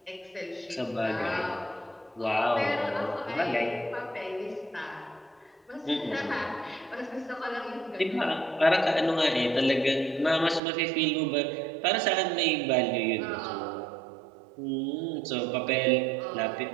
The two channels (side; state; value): left; drops out; at 10.6 s